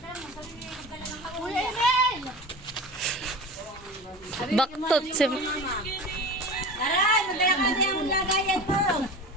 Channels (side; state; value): both; normal; correlation 0.33